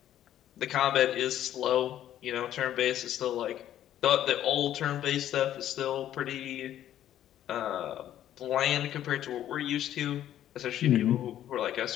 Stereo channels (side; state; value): right; quieter; 11.7 dB